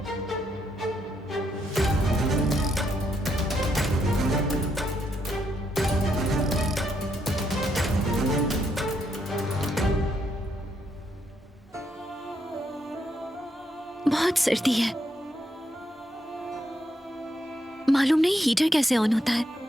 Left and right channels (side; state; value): both; normal; correlation 0.78